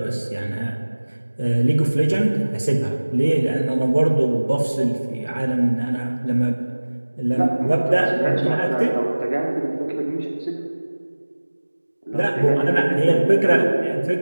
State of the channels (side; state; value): both; inverted; correlation -1.00